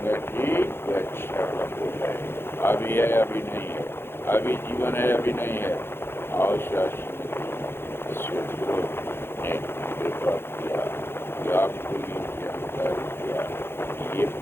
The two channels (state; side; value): late; right; 0.11 ms